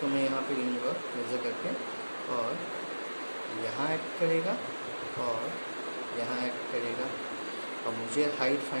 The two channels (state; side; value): inverted; both; correlation -1.00